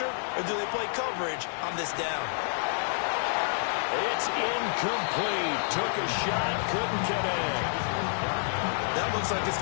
or do they play coverage on this down? It's incomplete. Took a shot, couldn't get in. That looks like it's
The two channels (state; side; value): silent; right; digital silence